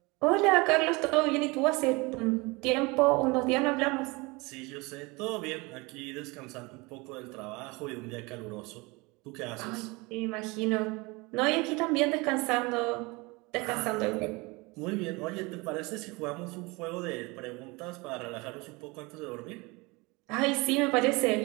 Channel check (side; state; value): left; quieter; 25.3 dB